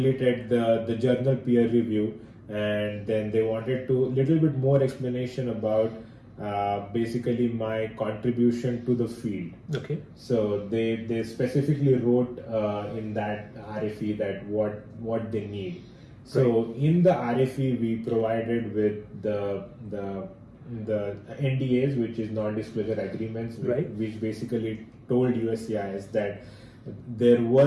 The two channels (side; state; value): both; identical; correlation 1.00